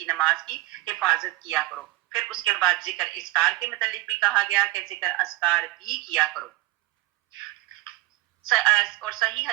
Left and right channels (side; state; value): left; quieter; 20.0 dB